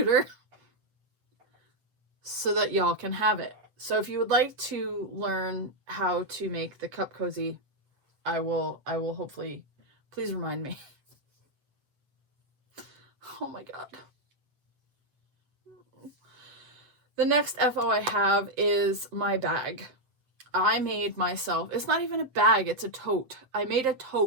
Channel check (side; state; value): left; late; 7.8 ms